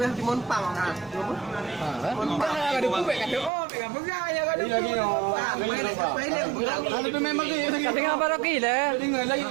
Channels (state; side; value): drops out; left; at 3.5 s